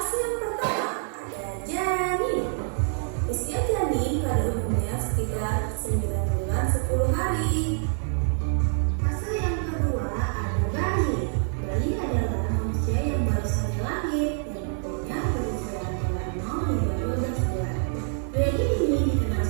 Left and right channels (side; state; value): left; silent; 61 dB below the other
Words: yang pertama ada janin. Usia janin pada umumnya sekitar 9 bulan 10 hari. Fase yang kedua ada bayi. Bayi adalah manusia yang baru saja lahir yang umurnya berusia antara 0 hingga 12 bulan. Bayi ini dikenal